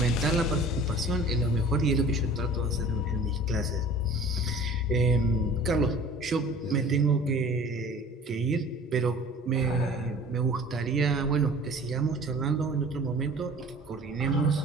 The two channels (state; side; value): normal; both; correlation 0.45